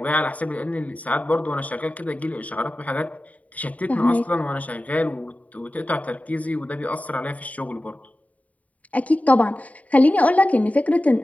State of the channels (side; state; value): right; late; 0.071 ms